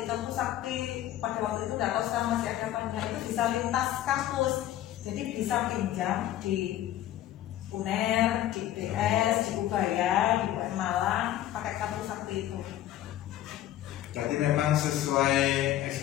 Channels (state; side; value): quieter; right; 12.9 dB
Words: pada waktu itu nggak tahu sekarang masih ada apa enggak, itu bisa lintas kampus, jadi bisa pinjam di UNER, di PS, di Ubaya, di UM Malang pakai kartu sakti itu. Berarti memang sesuai